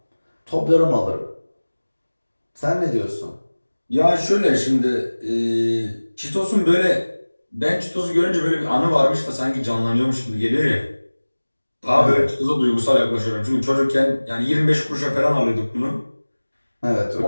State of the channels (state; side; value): inverted; both; correlation -1.00